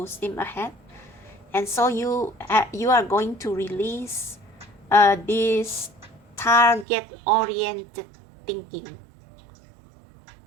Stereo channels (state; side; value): drops out; left; at 6.9 s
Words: steam ahead. And so you are going to release this target-oriented thinking.